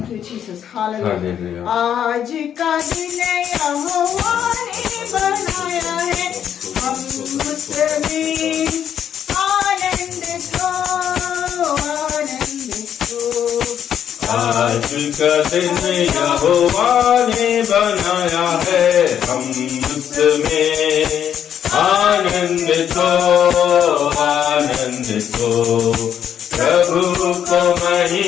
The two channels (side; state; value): right; quieter; 9.2 dB